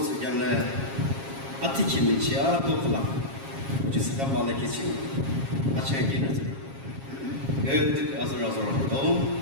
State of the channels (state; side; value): late; left; 7.4 ms